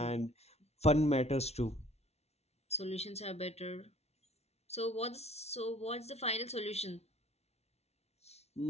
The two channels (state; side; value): late; right; 0.31 ms